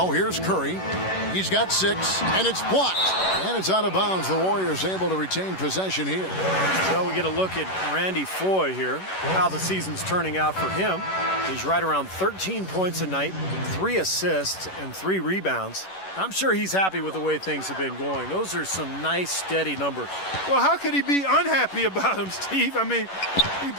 here's Curry. He's got 6, and it's blocked. And it's out of bounds. The Warriors able to retain possession here. Well, we get a look at Randy Foye here, how the season's turning out for him. He's right around 13 points a night, 3 assists, and 3 rebounds. I'm sure he's happy with the way things have been going. Those are some nice, steady numbers. Well, how could he be unhappy about him, Steve? I mean, he'd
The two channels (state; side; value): late; right; 11 ms